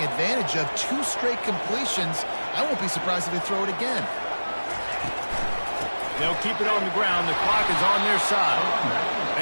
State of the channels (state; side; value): inverted; both; correlation -1.00